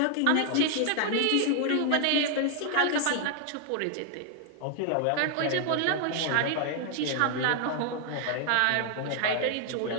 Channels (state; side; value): different; both; correlation 0.00